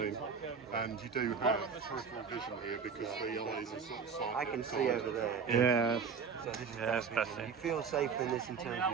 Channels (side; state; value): left; quieter; 6.0 dB